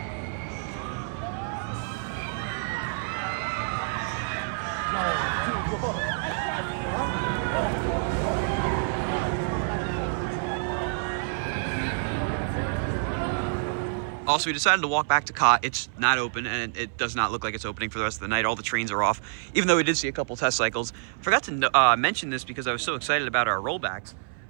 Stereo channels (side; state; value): left; silent; 58 dB below the other